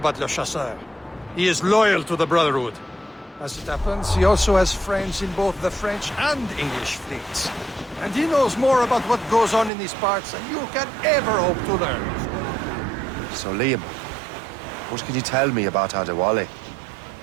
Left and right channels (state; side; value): drops out; left; at 9.7 s